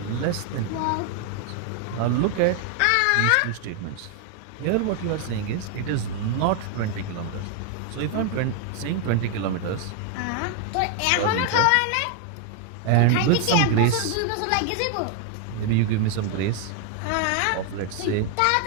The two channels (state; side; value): different; both; correlation 0.00